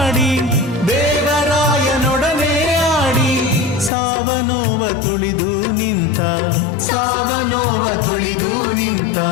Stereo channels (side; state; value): right; drops out; at 3.9 s